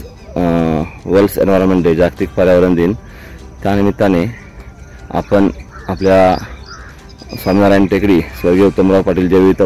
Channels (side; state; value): both; identical; correlation 1.00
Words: वर्ल्ड एन्व्हायरमेंट डे, जागतिक पर्यावरण दिन, त्यानिमित्ताने आपण आपल्या स्वामीनारायण टेकडी स्वर्गीय उत्तमराव पाटील जैविक